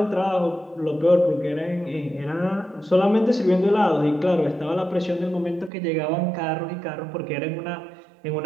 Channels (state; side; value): drops out; left; at 5.7 s